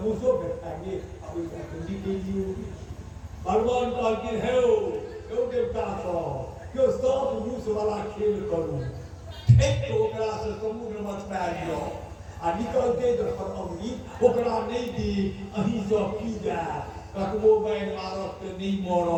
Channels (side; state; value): both; identical; correlation 1.00